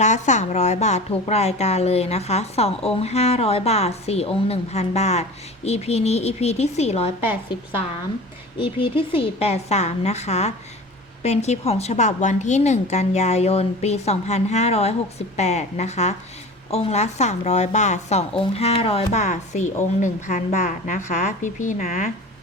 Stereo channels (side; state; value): both; normal; correlation 0.36